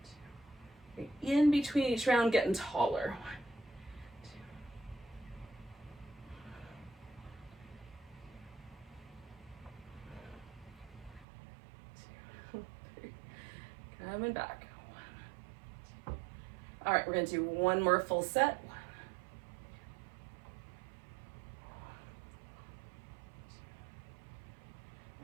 1, 2. In between each round, getting taller. 1, 2. Coming back. 1, 2. All right, we're going to do one more full set. 1,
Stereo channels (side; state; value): left; drops out; at 11.2 s